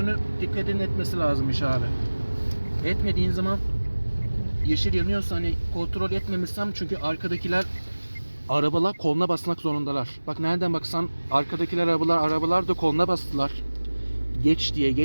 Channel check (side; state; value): both; inverted; correlation -1.00